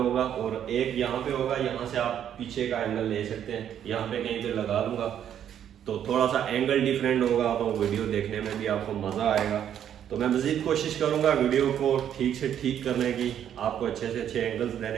और एक यहाँ पे होगा, यहाँ से आप पीछे का एंगल ले सकते हैं, यहाँ पे कहीं पे लगा दूंगा, तो थोड़ा सा एंगल डिफरेंट होगा, तो वीडियो देखने में भी आपको मज़ा आएगा। तो मैं मज़ीद कोशिश करूँगा वीडियो को ठीक से ठीक करने की, आपको अच्छे से अच्छे एंगल्स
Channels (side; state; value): left; quieter; 9.7 dB